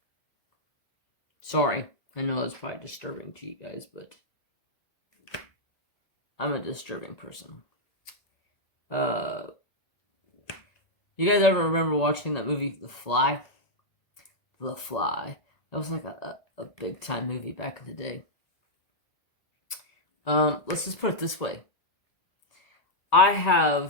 Sorry, I know it's probably disturbing to you guys, but I'm a disturbing person. You guys ever remember watching that movie, The Fly? The Fly. That was like a big time movie back in the day. Let's just put it this way. I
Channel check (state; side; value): late; right; 1.9 ms